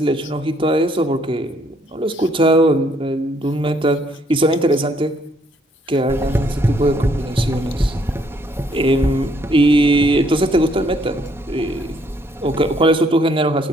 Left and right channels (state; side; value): normal; both; correlation 0.68